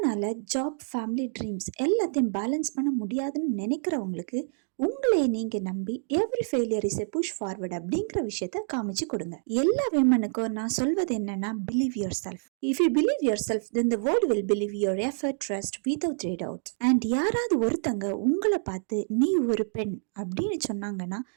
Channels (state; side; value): silent; left; digital silence